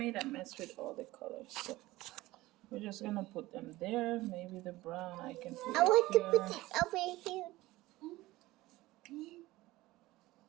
a mess with all the colors. So we're just gonna put them there. Maybe the brown I can put I it want to here. put it over here.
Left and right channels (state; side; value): quieter; left; 18.4 dB